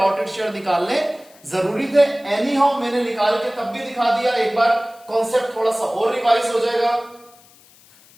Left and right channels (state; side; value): noise; left; hiss, 27 dB below the sound